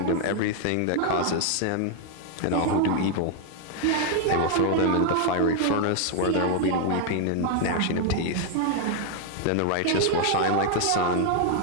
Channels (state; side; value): different; both; correlation 0.00